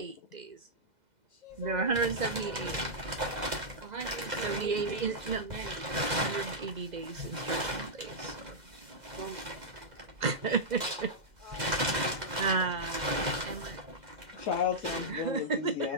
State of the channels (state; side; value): late; left; 2.0 ms